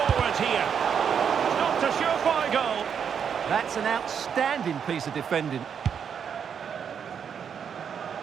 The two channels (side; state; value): left; quieter; 7.4 dB